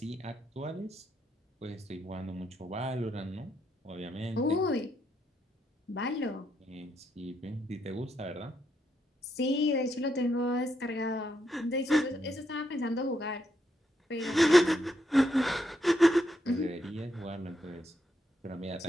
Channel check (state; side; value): normal; both; correlation 0.79